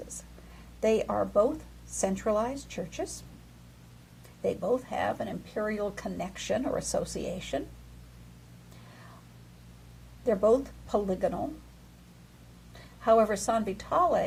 They are both centralized churches. They both have an imperial connection or association. They're both polygonal. However, San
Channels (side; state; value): both; identical; correlation 1.00